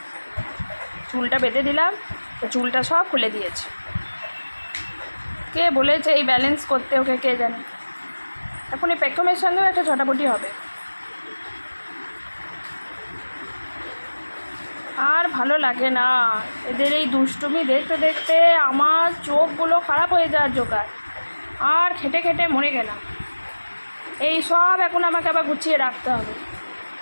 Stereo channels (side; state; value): both; inverted; correlation -1.00